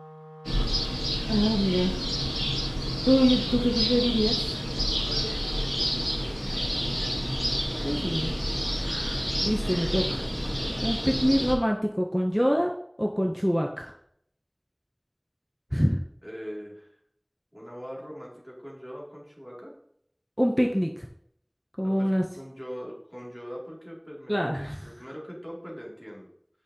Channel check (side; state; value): both; identical; correlation 1.00